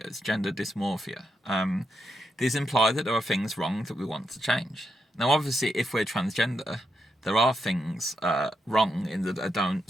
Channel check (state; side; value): normal; both; correlation 0.83